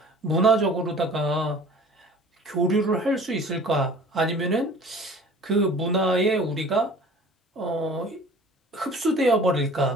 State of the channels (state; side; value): normal; both; correlation 0.46